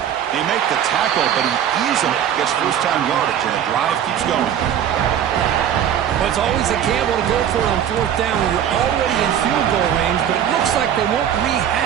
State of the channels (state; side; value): quieter; left; 9.7 dB